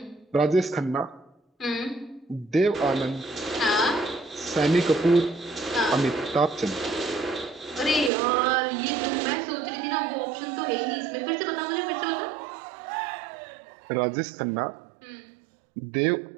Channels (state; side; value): drops out; left; at 8.1 s